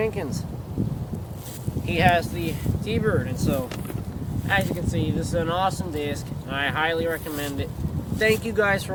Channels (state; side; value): identical; both; correlation 1.00